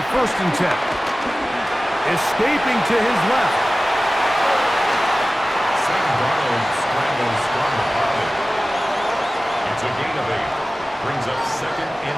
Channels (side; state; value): both; normal; correlation 0.97